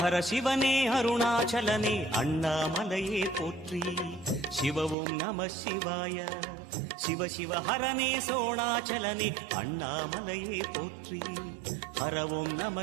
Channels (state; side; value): drops out; left; at 5.0 s